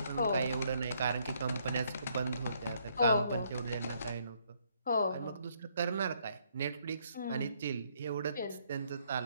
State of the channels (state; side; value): inverted; both; correlation -0.70